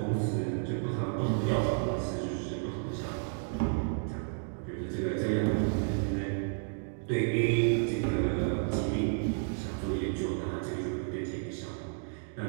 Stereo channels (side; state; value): left; silent; digital silence